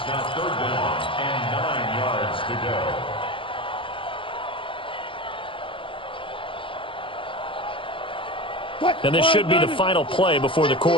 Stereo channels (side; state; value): right; late; 0.25 ms